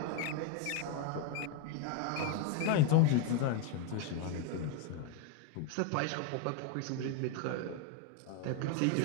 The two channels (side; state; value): both; different; correlation 0.02